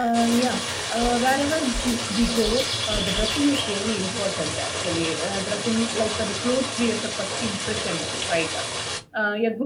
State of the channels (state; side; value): identical; both; correlation 1.00